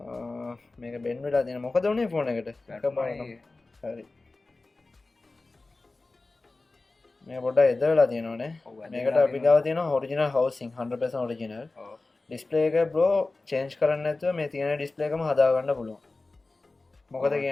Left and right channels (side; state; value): right; quieter; 3.4 dB